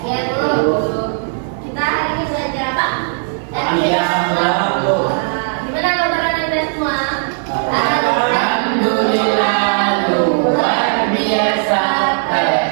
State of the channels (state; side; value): silent; left; digital silence